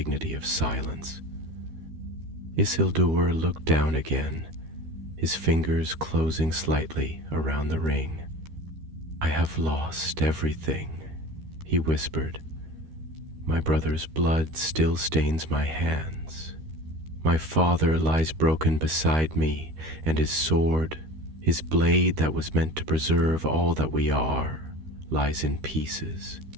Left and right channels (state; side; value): late; left; 13 ms